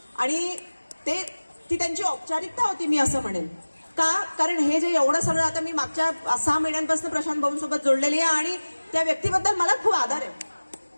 आणि ती त्यांची औपचारिकता होती, मी असं म्हणेन. का? कारण हे जे एवढं सगळं आता मी मागच्या 6 महिन्यांपासून प्रशांत भाऊंसोबत जोडलेली आहे आणि त्या व्यक्तीबद्दल मला खूप आदर आहे.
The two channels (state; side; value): inverted; both; correlation -1.00